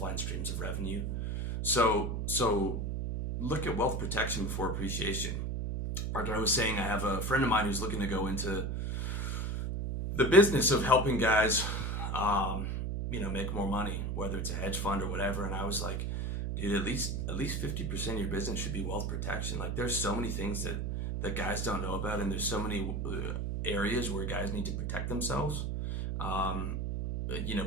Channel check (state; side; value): noise; right; hum, 1 dB below the sound